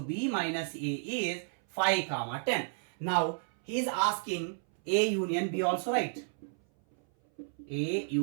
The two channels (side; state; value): left; silent; 56 dB below the other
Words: minus A is 5, 10. Now he is asking A union B also, right? A